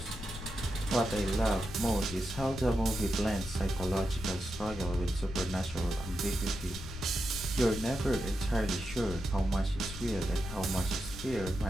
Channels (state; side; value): noise; left; rumble, 11 dB below the sound